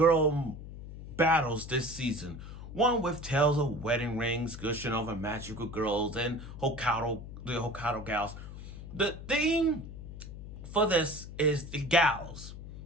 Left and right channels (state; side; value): noise; left; hum, 12 dB below the sound